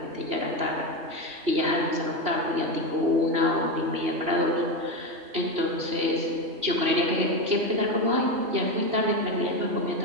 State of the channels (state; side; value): late; left; 2.9 ms